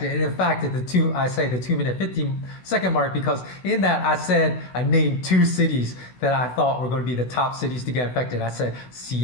And in fact, at the 2-minute 50-second mark, because in that I named 2 cities that I thought were going to be the top cities to get infected. I said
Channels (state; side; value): late; right; 16 ms